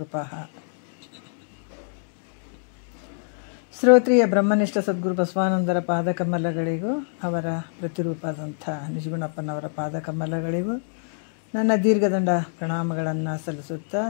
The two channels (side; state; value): right; silent; digital silence